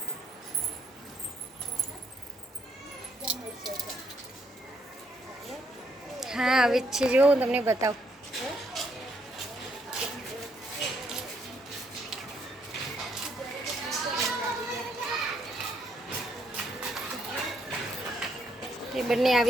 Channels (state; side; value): normal; both; correlation 0.73